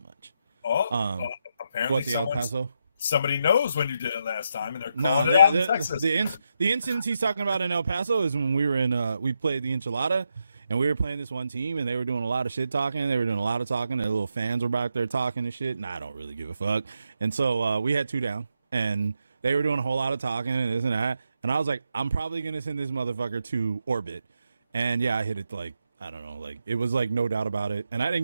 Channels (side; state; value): both; inverted; correlation -0.83